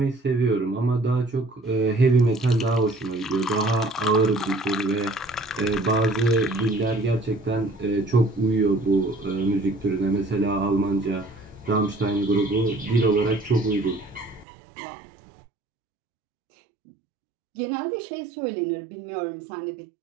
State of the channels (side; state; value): left; drops out; at 14.5 s